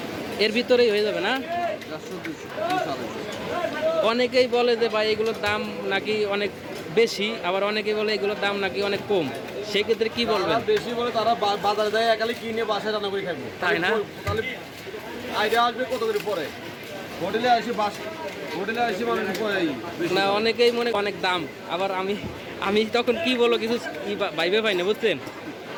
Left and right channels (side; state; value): both; identical; correlation 1.00